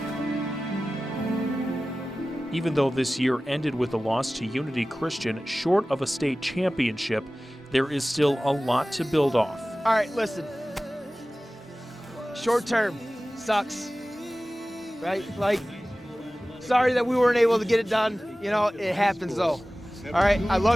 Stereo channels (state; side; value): normal; both; correlation 0.97